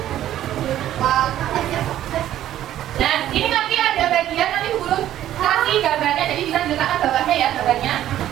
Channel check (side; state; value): left; quieter; 12.4 dB